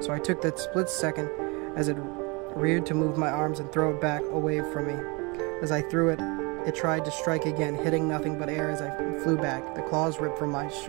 I took that split second as it reared to move my arms and throw it back away from me. As I threw it, it tried to strike again, hitting nothing but air as I flew back. The claws ripped from my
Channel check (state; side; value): quieter; left; 28.6 dB